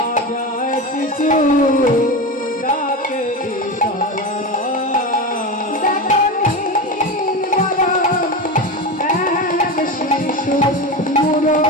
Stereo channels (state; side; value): normal; both; correlation 0.22